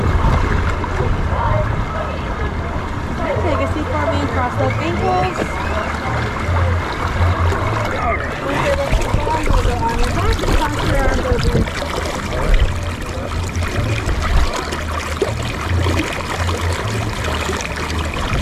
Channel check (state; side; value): identical; both; correlation 1.00